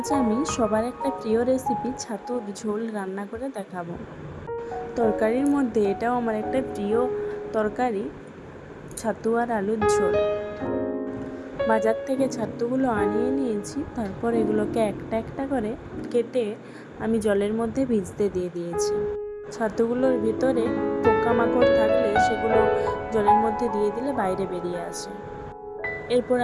আমি সবার একটা প্রিয় রেসিপি ছাতুর ঝোল রান্না করে দেখাবো। তরকারির মধ্যে এটাও আমার একটা প্রিয় তরকারি, ছাতু আর আলুর ঝোল। বাজার থেকে ছাতুগুলো আনিয়ে নিয়েছি, তারপর এগুলোকে একটা একটা করে কেটে আমি জলের মধ্যে ভিজতে দিয়ে দিয়েছি। ছাতুগুলোর ভিতরে পোকামাকড় থাকলে সেগুলো জলের মধ্যে দিয়ে দিলে বাইরে বেরিয়ে আসে। এরপর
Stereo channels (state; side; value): identical; both; correlation 1.00